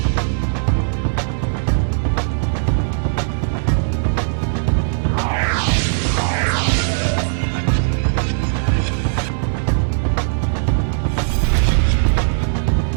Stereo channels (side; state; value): left; silent; 67 dB below the other